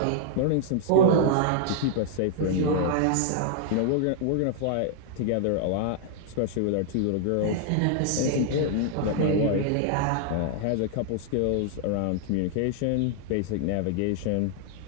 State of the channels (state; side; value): different; both; correlation -0.01